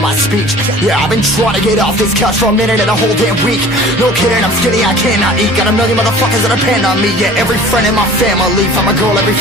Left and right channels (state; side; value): normal; both; correlation 0.45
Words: my speech. Yeah, I've been trying to get off this couch for a minute and a whole damn week. No kidding, I'm skinny, I cannot eat. Got a million motherfuckers that depend on me. Yeah, every friend in my family, from a girl, every